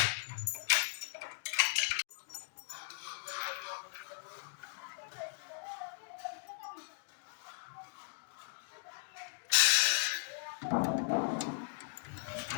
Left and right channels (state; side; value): silent; right; digital silence